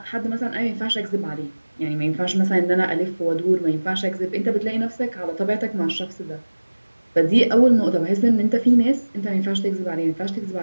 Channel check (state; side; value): inverted; both; correlation -1.00